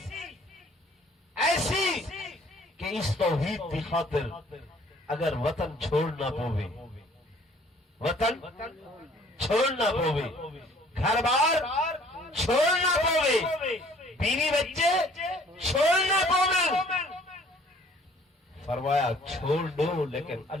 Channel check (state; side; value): normal; both; correlation 0.56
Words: ایسی کہ اس توحید کی خاطر اگر وطن چھوڑنا پوے، وطن چھوڑنا پوے، گھر بار چھوڑنا پوے، بیوی بچے چھوڑنا پوے، فرمایا چھوڑ دو لیکن